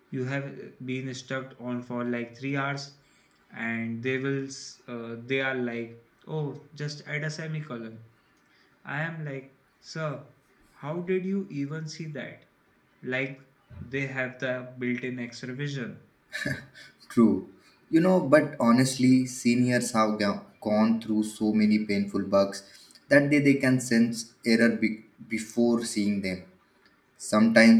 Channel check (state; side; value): identical; both; correlation 1.00